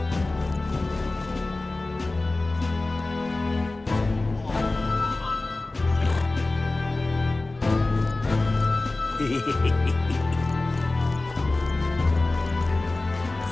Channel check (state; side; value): quieter; right; 3.1 dB